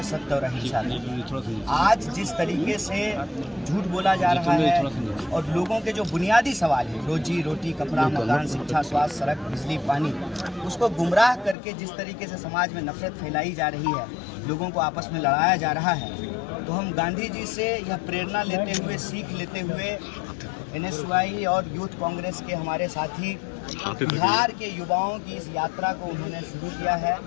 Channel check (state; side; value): drops out; right; at 11.6 s